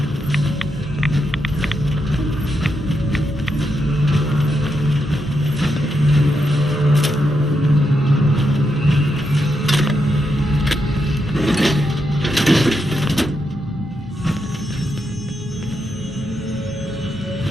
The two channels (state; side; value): normal; both; correlation 0.83